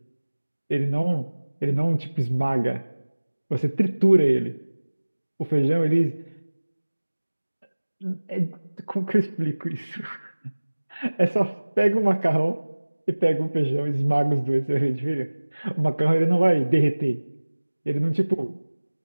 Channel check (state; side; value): inverted; both; correlation -1.00